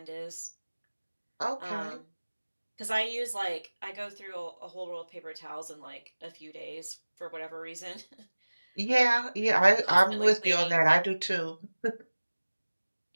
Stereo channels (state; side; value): inverted; both; correlation -1.00